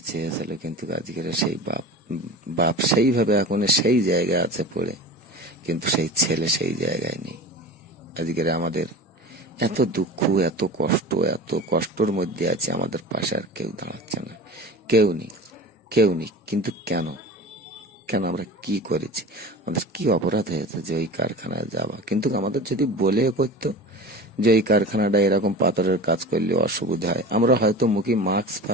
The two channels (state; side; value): normal; both; correlation 0.34